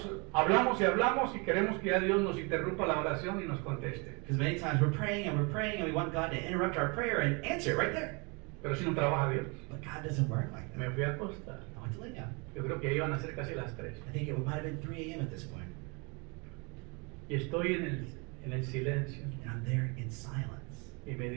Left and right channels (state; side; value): quieter; left; 31.1 dB